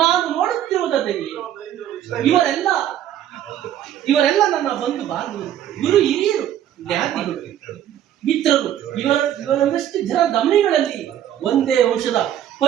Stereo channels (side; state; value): left; quieter; 11.0 dB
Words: ನೋಡುತ್ತಿರುವುದಾದರೆ ಇವರೆಲ್ಲ ನನ್ನ ಬಂಧು ಬಾಂಧವರು, ಗುರು ಹಿರಿಯರು, ಜ್ಞಾತಿಗಳು, ಮಿತ್ರರು. ಇವರನ್ನಷ್ಟು ಜನ ದಮನಿಗಳಲ್ಲಿ ಒಂದೇ ವಂಶದ